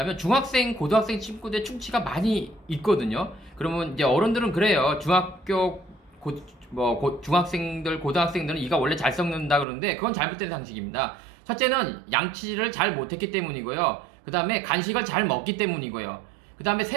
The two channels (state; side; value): drops out; left; at 9.7 s